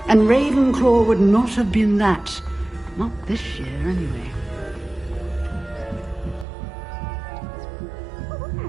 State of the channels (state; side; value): drops out; left; at 6.5 s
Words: And Ravenclaw would not have been that. Not this year, anyway.